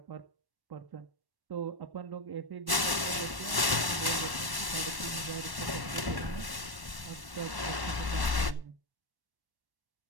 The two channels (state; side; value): late; left; 1.1 ms